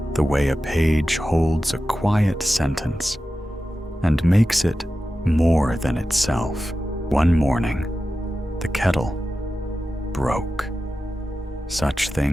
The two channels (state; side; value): normal; both; correlation 0.93